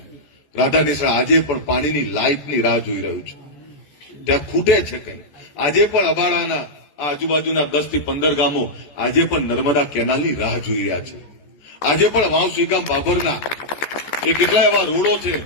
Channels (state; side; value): late; right; 14 ms